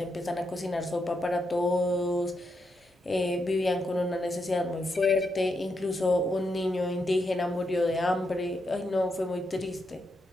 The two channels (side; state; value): both; normal; correlation 0.82